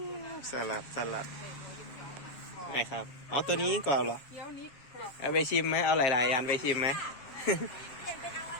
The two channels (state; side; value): late; right; 7.5 ms